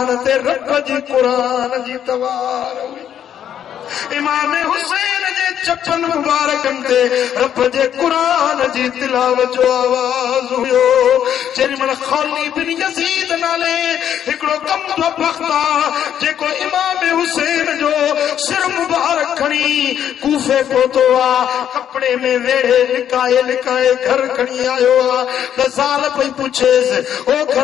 ते रब जी क़ुरान जी तवार हुई। इमाम हुसैन जे चपन मुबारकनि ते रब जे क़ुरान जी तिलावत जो आवाज़ हुयो। जेॾी महिल खौली बिन यज़ीद नाले हिकिड़ो कमज़ो बख़्त आहे, जेको इमाम हुसैन जो सिर मुबारक खणी कूफे पहुतो आहे, कपिड़े में वेड़े लिकाए लिकाए घर खणी आयो आहे। त ज़ाल पई पुछेसि, ओ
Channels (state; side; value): quieter; right; 9.7 dB